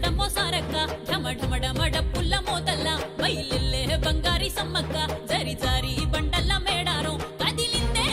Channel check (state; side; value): identical; both; correlation 1.00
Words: సారక్క ఢమఢమడమ డప్పుల్ల మోతల్ల బయలెల్లే బంగారి సమ్మక్క జరి జారి బండల్ల మేడారం కదిలిందే